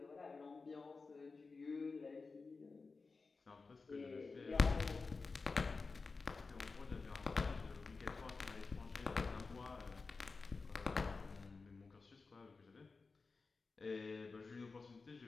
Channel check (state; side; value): quieter; right; 4.2 dB